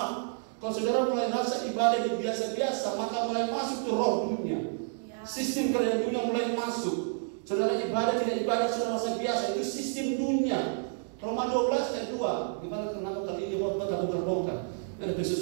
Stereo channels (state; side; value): silent; left; digital silence